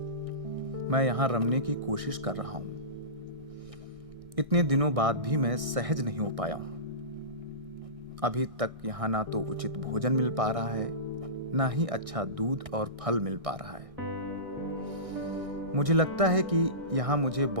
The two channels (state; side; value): late; left; 1.6 ms